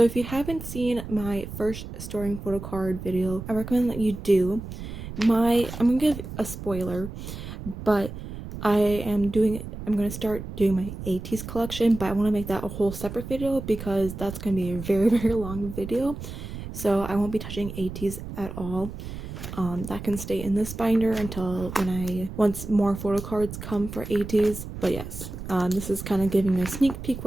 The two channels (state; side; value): noise; right; rumble, 9 dB below the sound